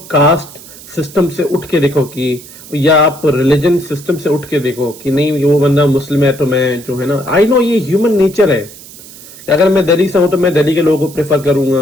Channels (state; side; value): noise; right; hiss, 18 dB below the sound